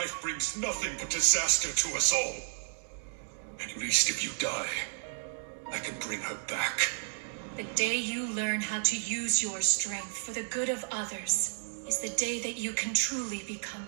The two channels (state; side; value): silent; left; digital silence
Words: brings nothing but disaster to us all. At least if you die, I can bring her back. The day you learn how to use your strength for the good of others is the day that you can truly become